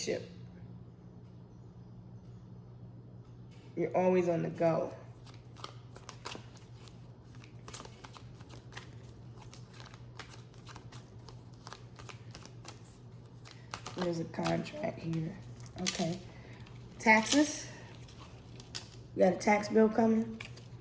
You're always on the go. There's a contract here. Okay. Taxes. You got a tax bill coming?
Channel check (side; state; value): both; identical; correlation 1.00